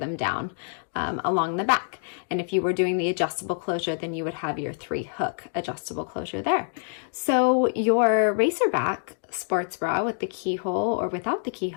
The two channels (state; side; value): silent; right; digital silence